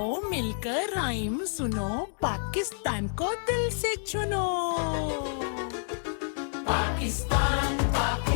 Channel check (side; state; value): right; silent; digital silence